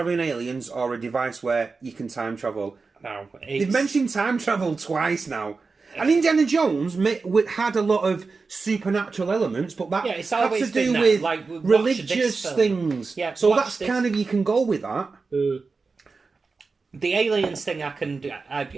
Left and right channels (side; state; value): left; quieter; 4.3 dB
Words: aliens or a device where you can time travel. No, they've mentioned time travel twice now. And Indiana Jones had a lot of supernatural elements, but that had to do with religious things. Yeah, so that's kind of, you can go with that. The aliens thing,